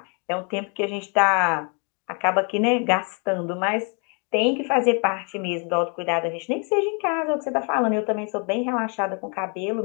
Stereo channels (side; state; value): right; quieter; 37.5 dB